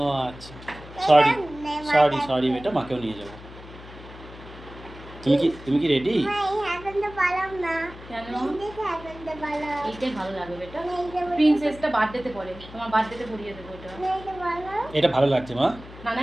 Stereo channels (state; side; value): noise; left; hum, 17 dB below the sound